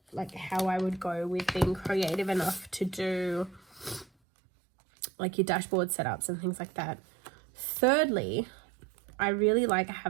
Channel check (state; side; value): drops out; left; at 4.0 s